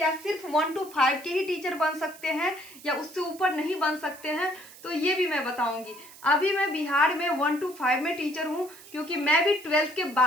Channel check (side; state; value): right; noise; hiss, 20 dB below the sound